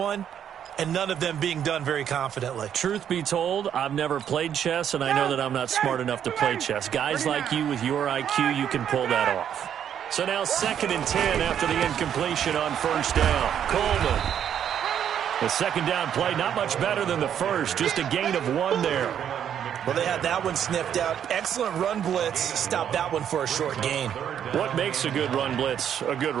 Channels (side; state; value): left; quieter; 9.2 dB